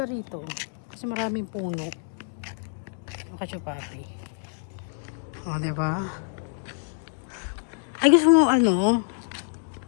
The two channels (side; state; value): right; silent; 60 dB below the other